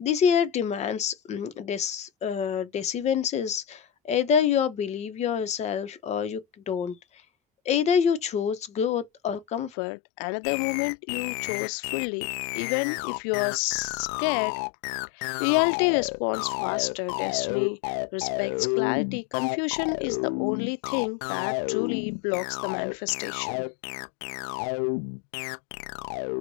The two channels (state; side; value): drops out; right; at 9.7 s